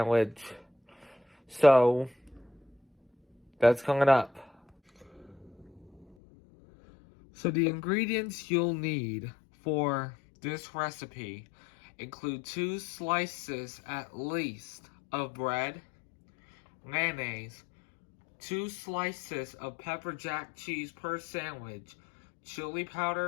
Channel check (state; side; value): drops out; right; at 6.1 s